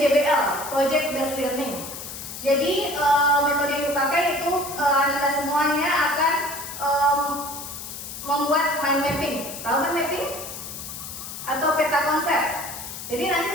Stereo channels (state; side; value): noise; left; hiss, 10 dB below the sound